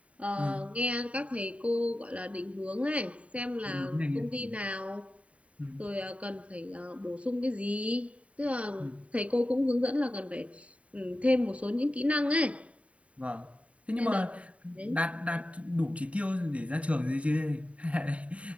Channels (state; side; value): late; left; 0.065 ms